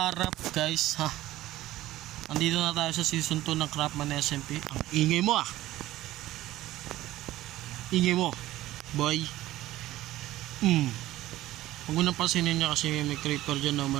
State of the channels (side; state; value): left; quieter; 15.6 dB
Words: up guys, ha? Andito na tayo sa season 2 ng Craftman SMP. Ang ingay mo ah. Ingay mo, boy. Huwag mo nang pansinin niya kasi may creeper dyan na